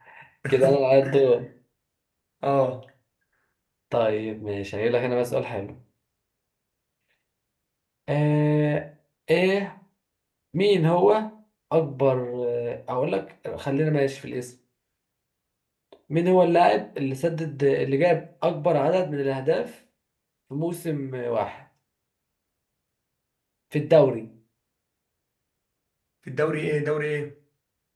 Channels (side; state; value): both; identical; correlation 1.00